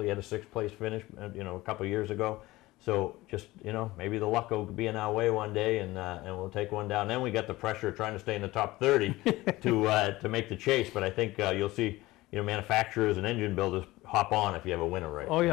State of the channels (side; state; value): right; quieter; 18.9 dB